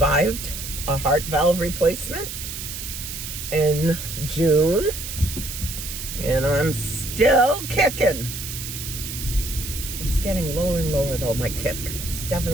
a heart valve replacement in June. And I'm still kicking. It's getting lower and lower though, my kick. It's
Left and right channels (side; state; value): right; noise; hiss, 7 dB below the sound